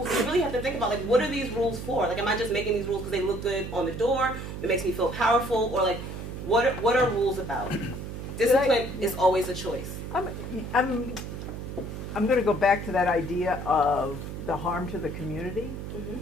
we really have to think about what are these rules for? Am I just making these rules because they look good on the door? It makes me feel powerful, or what are rules about? Discipline is always a choice. I'm going to go back to that idea of the harm to the community. Mm-hmm.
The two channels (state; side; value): noise; right; hum, 8 dB below the sound